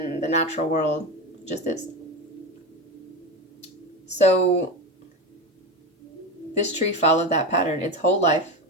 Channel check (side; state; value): both; normal; correlation 0.20